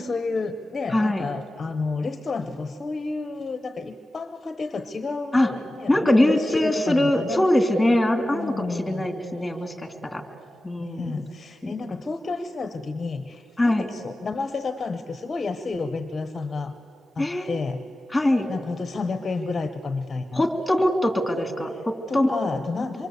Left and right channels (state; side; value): normal; both; correlation 0.94